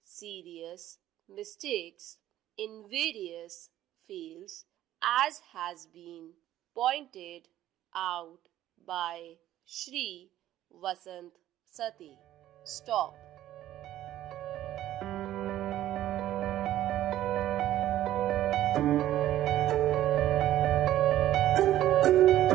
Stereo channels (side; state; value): left; quieter; 13.3 dB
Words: serious mistakes in various fields, as has been pointed out by Shri Vasant Sati. Stop.